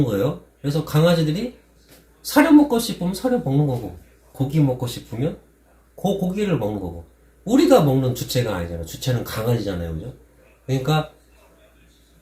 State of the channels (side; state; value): both; identical; correlation 1.00